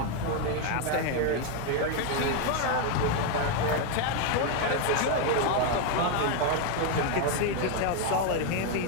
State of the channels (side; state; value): both; different; correlation 0.01